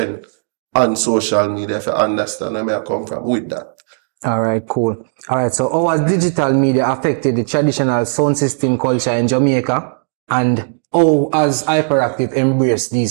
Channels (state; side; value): silent; left; digital silence